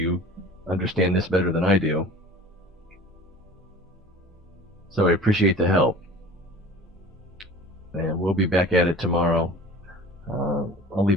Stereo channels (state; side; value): normal; both; correlation 0.41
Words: understand this better than I do. So I appreciate the help. And we'll be back at it tomorrow. I'll